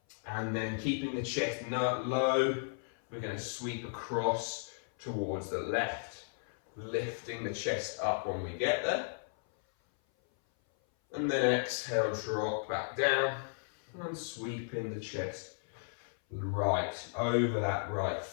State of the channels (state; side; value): silent; right; 55 dB below the other